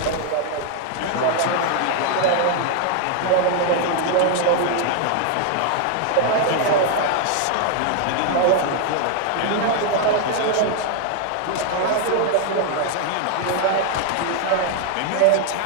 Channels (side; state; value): both; different; correlation 0.00